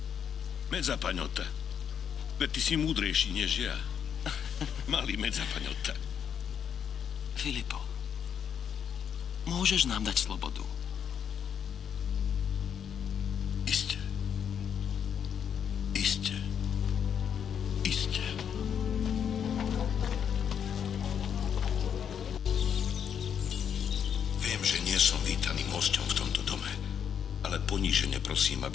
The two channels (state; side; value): quieter; right; 8.1 dB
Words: Mezzapagnotta. Veď ty si múdrejší než ja. Malý Mezzapagnotta. Filipo, môžeš nám dať slobodu? Iste. Iste. Iste. Viem, že nie som vítaným hosťom v tomto dome, ale ponížene prosím,